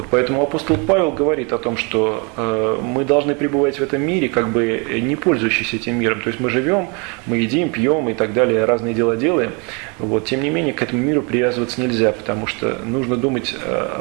поэтому апостол Павел говорит о том, что мы должны пребывать в этом мире, как бы не пользующись этим миром. То есть мы живем, мы едим, пьем и так далее, разные дела делаем. Вот, тем не менее, к этому миру привязываться нельзя, потому что нужно думать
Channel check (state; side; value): quieter; left; 32.5 dB